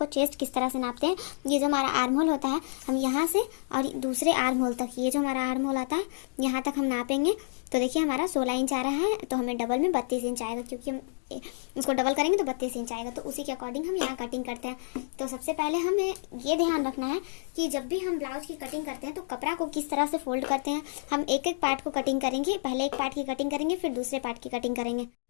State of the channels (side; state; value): right; silent; digital silence